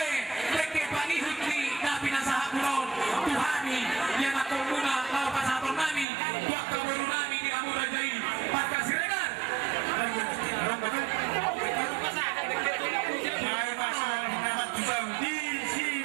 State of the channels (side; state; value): left; drops out; at 6.1 s